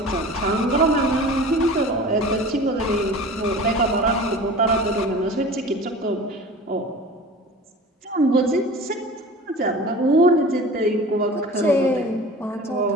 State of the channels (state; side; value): normal; both; correlation 0.39